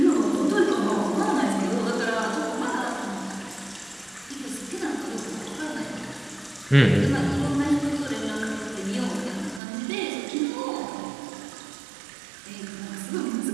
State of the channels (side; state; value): left; drops out; at 9.6 s